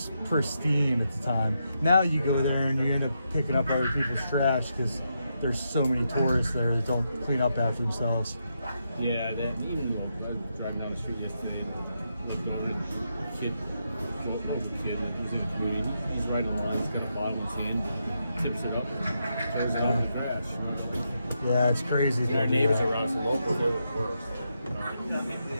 pristine at the time. Now you go there and you end up picking up other people's trash because there's so many tourists there that don't clean up after themselves. Yeah, that even though I was driving down the street yesterday and looked over at a kid, like he was in the community, he's riding around, he's got a bottle in his hand, tips it up, throws it out in the trash. You know? Yeah, it's crazy. Our neighbors around us, the locals are the worst.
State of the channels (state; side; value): inverted; both; correlation -0.83